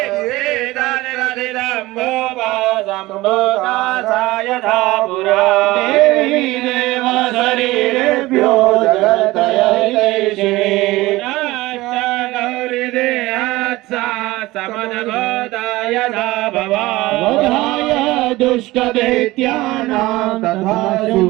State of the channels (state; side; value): quieter; left; 19.1 dB